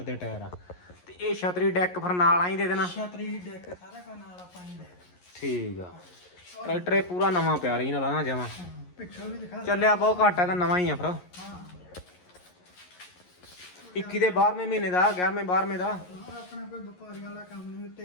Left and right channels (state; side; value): late; right; 11 ms